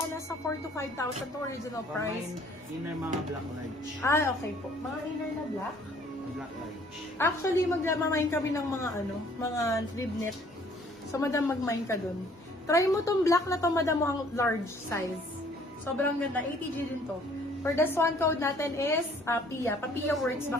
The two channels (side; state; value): both; normal; correlation 0.58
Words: Nasa 4 to 5,000 to original price. Inner mga black large. Ah, okay po. Mga inner na black? Black large. Actually, magmamain kami ng mga mga rib knit. So, madam, mag-mine ka dun. Try mo tong black na to, madam, mo ang large size. Sobrang ganda. ATG din to. For this one, code natin is PIA. Pa-PIA works